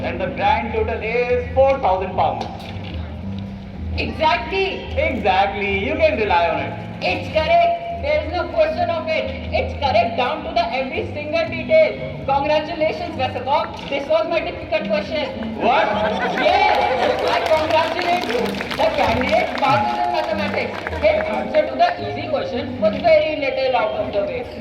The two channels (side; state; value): both; identical; correlation 1.00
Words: And the grand total is 4,000 pounds. Exactly. Exactly. You can rely on it. It's correct. There is no question of it. It's correct down to the every single detail. Congratulations, Westergaard. This was my difficult question. What? Yes, I congratulate you. The candidate passes in mathematics. His answer to the easy question was very little out of the way.